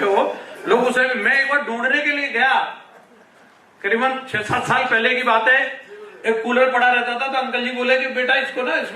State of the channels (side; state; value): both; identical; correlation 1.00